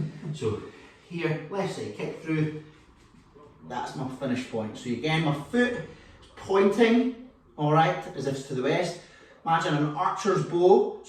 So here, left side kick through, that's my finish point. So again, my foot is pointing, all right, as if it's to the west. Imagine an archer's bow,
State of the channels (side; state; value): both; identical; correlation 1.00